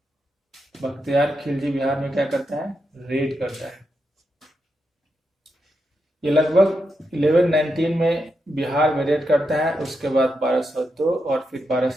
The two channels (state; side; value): normal; both; correlation 0.85